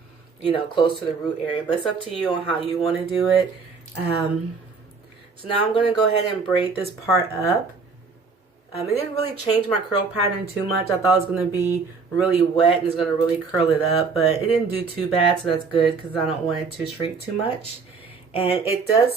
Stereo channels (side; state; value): left; quieter; 4.8 dB